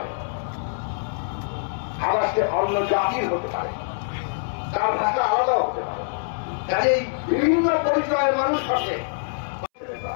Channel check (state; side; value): silent; right; 62 dB below the other